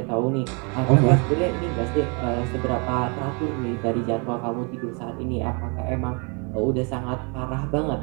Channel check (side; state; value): left; quieter; 34.2 dB